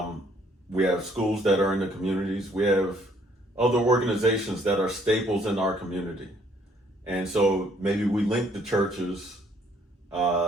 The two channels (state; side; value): normal; both; correlation 0.64